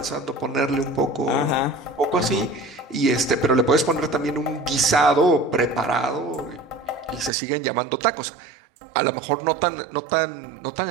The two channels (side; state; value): left; drops out; at 7.3 s